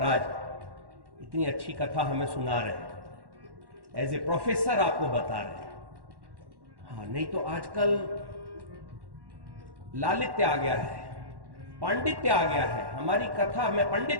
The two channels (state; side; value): late; left; 1.1 ms